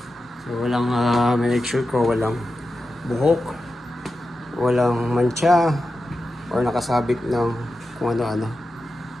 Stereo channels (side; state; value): both; normal; correlation 0.91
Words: So walang make sure ko walang buhok, walang mancha or nakasabit ng kung ano-ano.